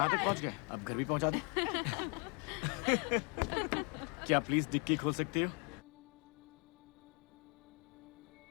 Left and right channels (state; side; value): quieter; right; 35.5 dB